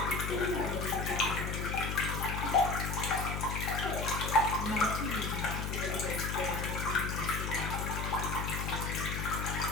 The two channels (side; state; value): left; noise; hum, 2 dB below the sound